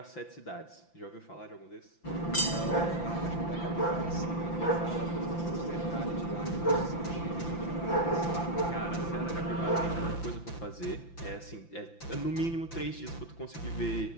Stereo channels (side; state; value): right; late; 5.9 ms